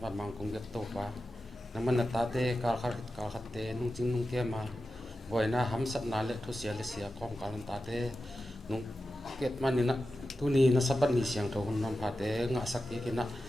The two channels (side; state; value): both; normal; correlation 0.92